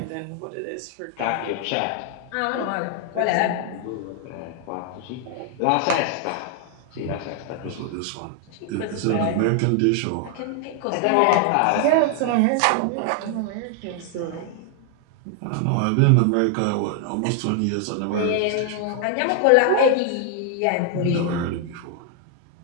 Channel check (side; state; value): both; different; correlation 0.00